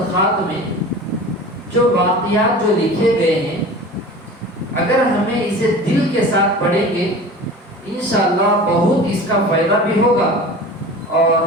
میں جو واقعات جو لکھے گئے ہیں، اگر ہمیں اسے دل کے ساتھ پڑھیں گے انشاءاللہ بہت اس کا فائدہ بھی ہوگا اور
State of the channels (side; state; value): both; normal; correlation 0.37